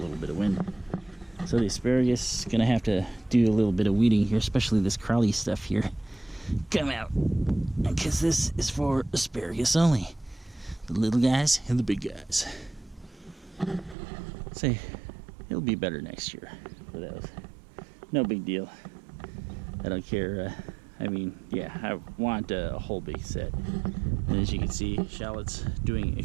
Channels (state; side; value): drops out; left; at 14.0 s